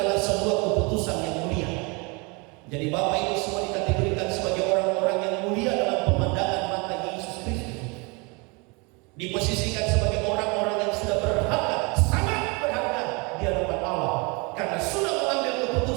sebuah keputusan yang mulia. Jadi Bapak Ibu semua dikategorikan sebagai orang-orang yang mulia dalam pemandangan mata Yesus Kristus. Diposisikan sebagai orang-orang yang sudah berharga, sangat berharga di hadapan Allah, karena sudah mengambil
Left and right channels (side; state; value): left; quieter; 29.5 dB